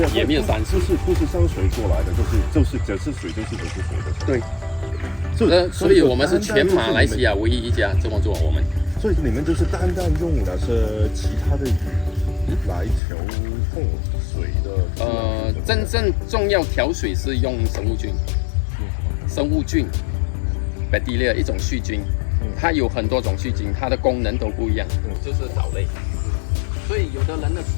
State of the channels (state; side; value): drops out; right; at 13.0 s